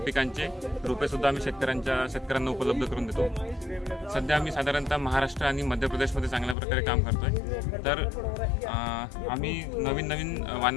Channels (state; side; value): drops out; right; at 6.6 s